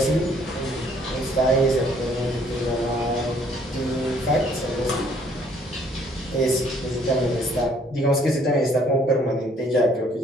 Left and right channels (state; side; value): normal; both; correlation 0.62